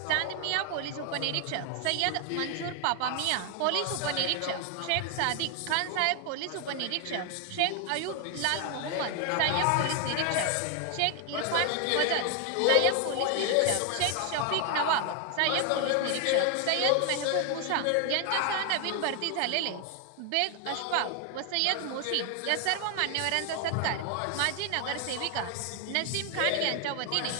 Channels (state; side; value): different; both; correlation 0.00